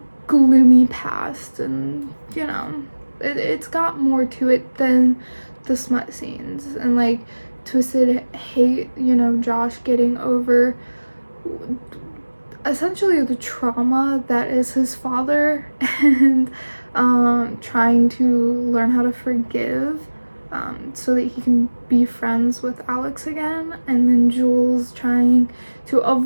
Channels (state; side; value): inverted; both; correlation -1.00